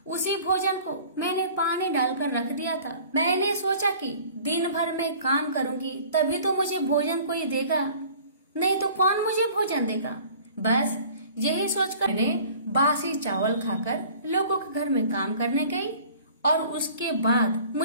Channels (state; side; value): inverted; both; correlation -0.48